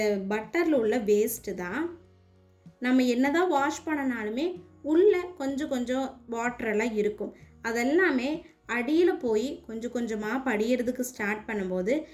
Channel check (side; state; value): both; identical; correlation 1.00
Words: பட்டரில் உள்ள வேஸ்ட்டு தான். நம்ம என்ன தான் வாஷ் பண்ணனாலுமே உள்ளே கொஞ்சம் வாட்டரெல்லாம் இருக்கும். அதெல்லாமே அடியில் போய் கொஞ்சம் கொஞ்சமாக படிகிறதுக்கு ஸ்டார்ட் பண்ணும்போது